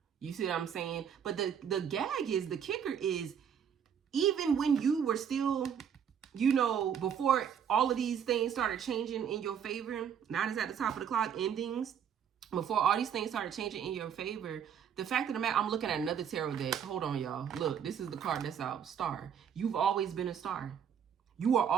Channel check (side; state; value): left; quieter; 8.1 dB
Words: You see what I'm saying? But the gag is, the kicker is, even when you were still, you know, before all of these things started changing in your favor, 9 is at the top of the clock, endings, before all these things started changing in your favor, the fact of the matter, I'm looking at another tarot deck. Hold on, y'all. Look, this is the card that's out. Star. You've always been a star. You are